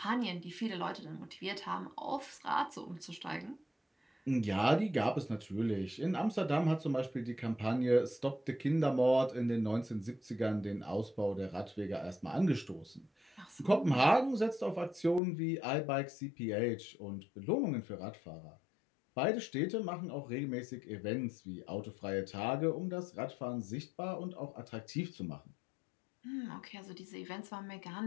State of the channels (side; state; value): right; drops out; at 15.2 s